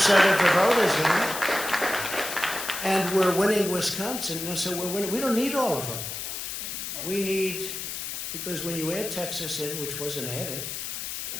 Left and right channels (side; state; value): left; noise; hiss, 6 dB below the sound